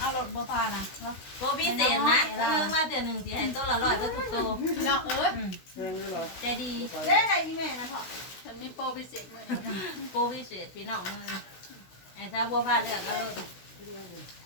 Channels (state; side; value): late; right; 16 ms